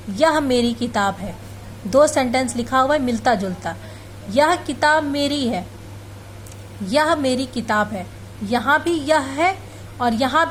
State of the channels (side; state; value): both; identical; correlation 1.00